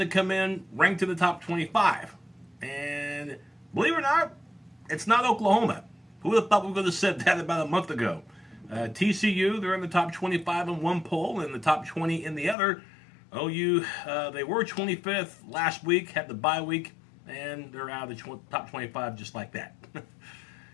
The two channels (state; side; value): drops out; right; at 12.6 s